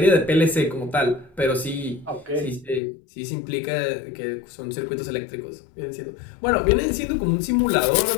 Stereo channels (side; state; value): right; drops out; at 2.8 s